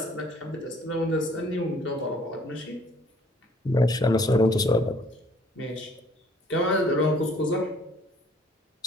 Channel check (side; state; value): both; normal; correlation 0.59